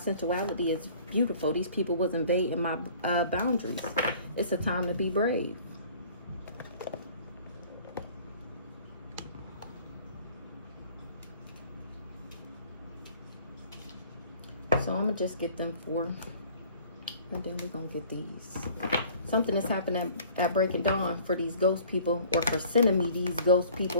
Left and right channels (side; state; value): both; inverted; correlation -0.51